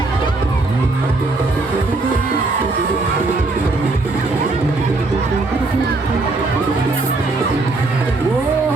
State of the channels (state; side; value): quieter; left; 3.3 dB